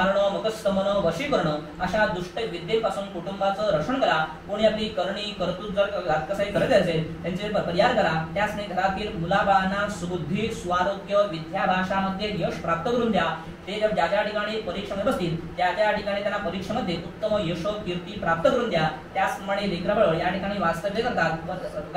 मुखस्तमन वशीकरण अशा दुष्ट विद्येपासून कुटुंबाचं रक्षण करा कोणी आपली करणी कर्तृत्व जर घातकसाई करत असेल त्यांचे परिहार करा त्यासने घरातील मुलाबाळांना सुबुद्धी स्वारोग्य विद्या भाषामध्ये यश प्राप्त करून द्या ते जर ज्या ज्या ठिकाणी परीक्षेमध्ये बसतील त्या त्या ठिकाणी त्यांना परीक्षेमध्ये उत्तम यश कीर्ती प्राप्त करून द्या त्याचप्रमाणे लेकरबाळ या ठिकाणी वास्तव्य करतात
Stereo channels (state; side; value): identical; both; correlation 1.00